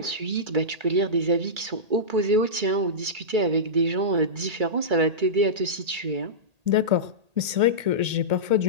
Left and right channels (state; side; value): late; left; 1.8 ms